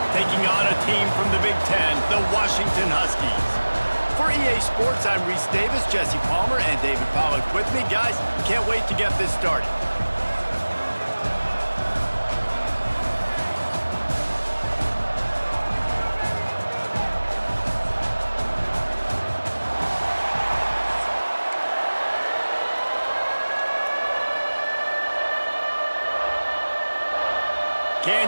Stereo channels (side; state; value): both; inverted; correlation -1.00